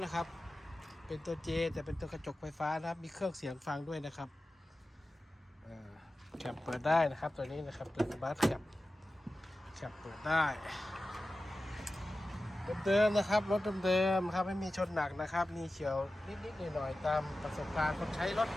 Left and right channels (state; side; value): normal; both; correlation 0.94